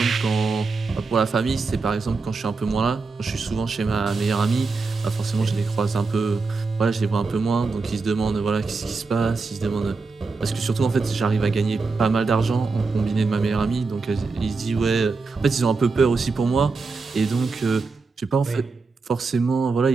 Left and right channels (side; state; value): left; quieter; 4.2 dB